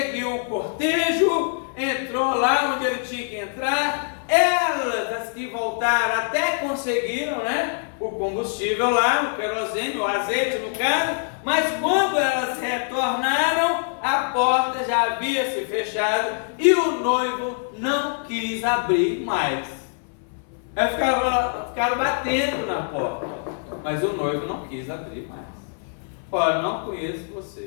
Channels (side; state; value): right; silent; 61 dB below the other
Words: o cortejo, entrou lá onde ele tinha que entrar. Elas, as que voltaram, até conseguiram, né, o combustível lá, o querosene, o azeite no caso, mas quando elas retornaram, a porta já havia se fechado e o noivo não quis abrir mais. Elas ficaram batendo na porta, mas o noivo não quis abrir mais. Olha, não conheço